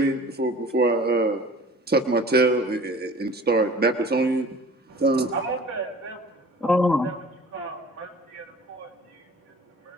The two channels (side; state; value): both; normal; correlation 0.46